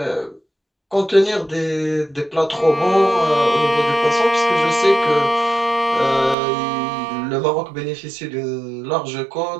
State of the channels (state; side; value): drops out; left; at 6.4 s